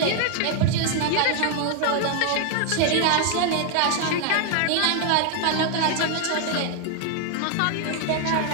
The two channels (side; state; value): both; different; correlation 0.00